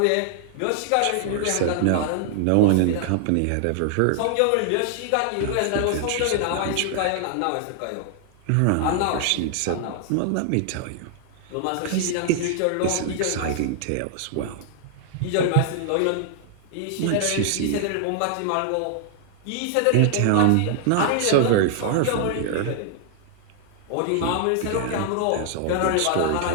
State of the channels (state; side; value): different; both; correlation 0.00